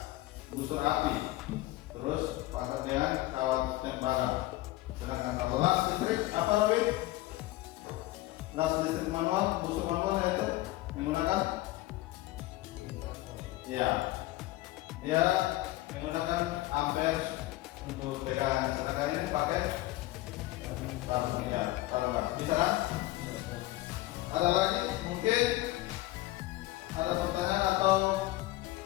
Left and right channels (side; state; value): right; quieter; 17.6 dB